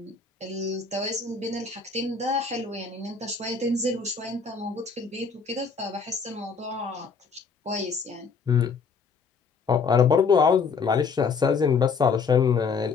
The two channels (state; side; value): quieter; right; 5.2 dB